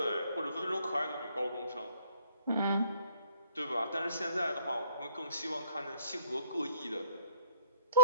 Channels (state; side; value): inverted; both; correlation -0.61